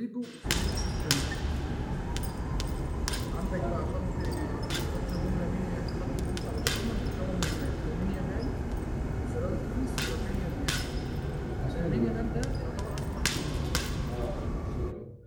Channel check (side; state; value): both; identical; correlation 1.00